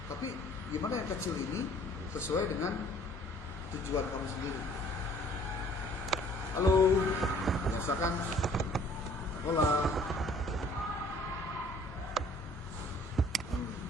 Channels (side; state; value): both; normal; correlation 0.56